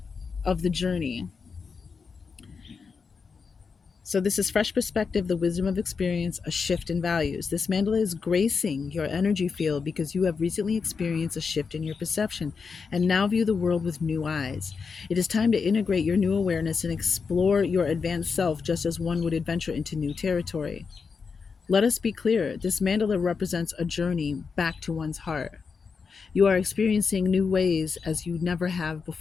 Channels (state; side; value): quieter; right; 5.3 dB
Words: of the journey. So this is fresh perspective, the wisdom of experience, a shift in values. This mandala is gracing your energy field because you have recently experienced a shift in your perception and now view the world with new eyes. It is time to integrate your new awareness and explore your advanced self just as one would adventure into new territory. Let us be clear, this mandala represents a journey back to one's heart. You are experiencing new ways as you never have